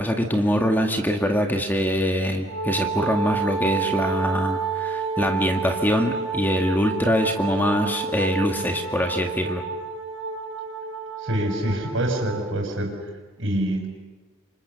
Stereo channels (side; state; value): both; normal; correlation 0.63